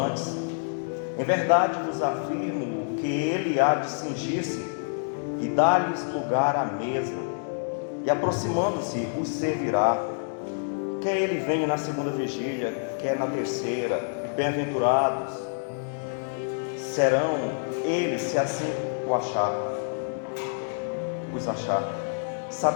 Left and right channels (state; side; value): silent; right; digital silence